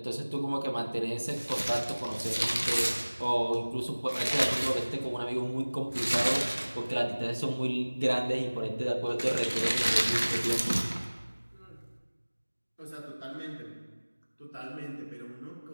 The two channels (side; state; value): both; inverted; correlation -1.00